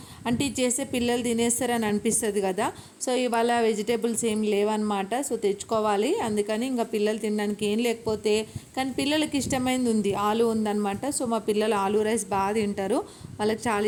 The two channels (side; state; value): both; identical; correlation 1.00